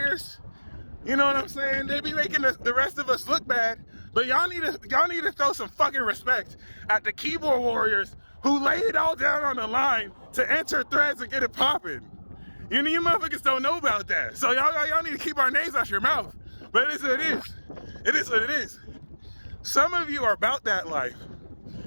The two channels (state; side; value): inverted; both; correlation -1.00